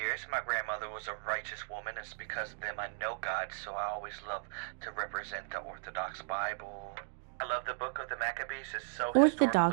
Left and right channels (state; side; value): silent; left; digital silence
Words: My grandmother was a righteous woman. It's because of them I know God, so I always love to represent the Orthodox Bible. I love the book of the Maccabees. It's so